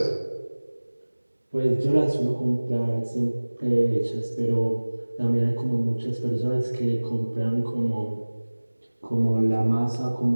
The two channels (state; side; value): inverted; both; correlation -1.00